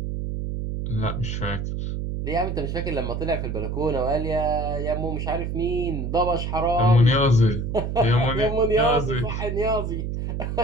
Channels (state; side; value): noise; right; hum, 3 dB below the sound